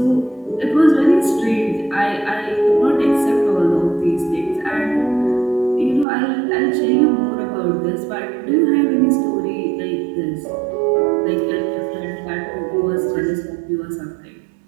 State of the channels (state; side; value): drops out; left; at 6.1 s